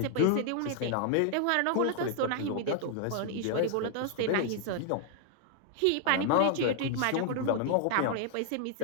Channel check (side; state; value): both; different; correlation 0.00